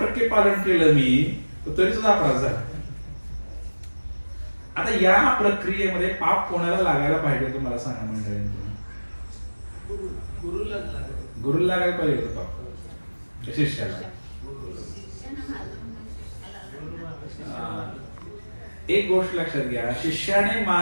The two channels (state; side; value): inverted; both; correlation -1.00